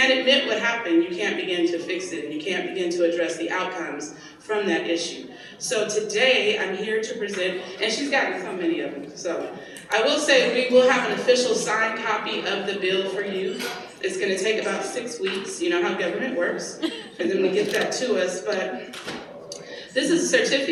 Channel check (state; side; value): identical; both; correlation 1.00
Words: admit what happened, you can't begin to fix it, and you can't begin to address the outcomes from that issue. So today, I'm here to present, and she's gotten so many of them. So I will say we will have an official signed copy of the bill for you. It's going to take about 6 weeks. You know how government works, for them to get that to us. But this is a